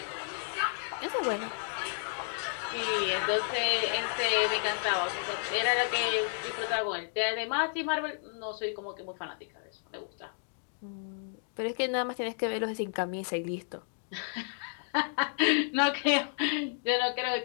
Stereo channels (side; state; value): right; silent; 57 dB below the other